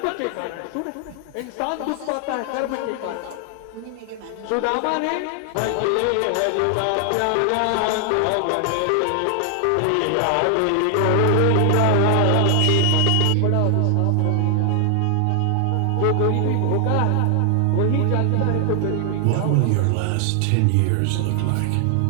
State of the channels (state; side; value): different; both; correlation 0.00